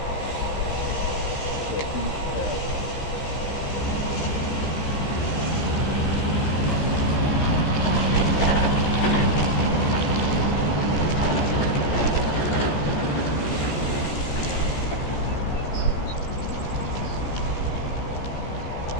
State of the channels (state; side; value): late; right; 13 ms